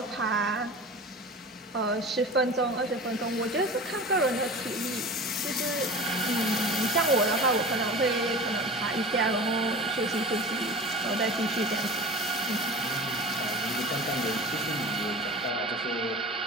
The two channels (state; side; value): normal; both; correlation 0.35